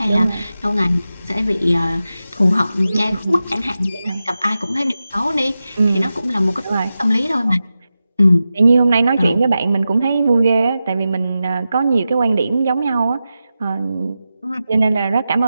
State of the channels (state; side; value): inverted; both; correlation -0.92